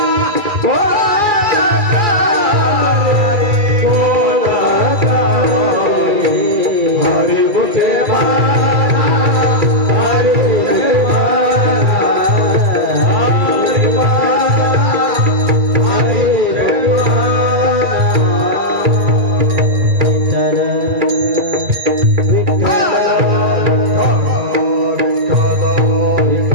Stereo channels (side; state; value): left; late; 2.3 ms